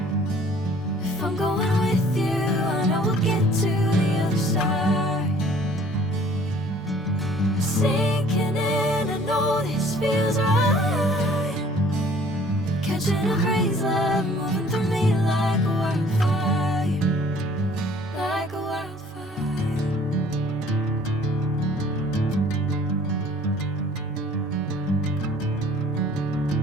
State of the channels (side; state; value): both; normal; correlation 0.54